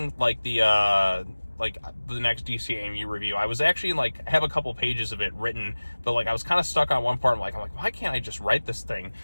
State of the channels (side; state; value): both; inverted; correlation -1.00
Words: like the next DC AMU review. I was actually like have a couple pages of it written, but like I was kind of stuck on one part. I'm like, why can't I just write this thing?